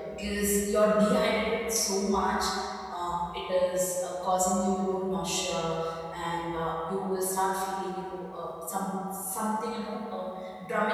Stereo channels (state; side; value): identical; both; correlation 1.00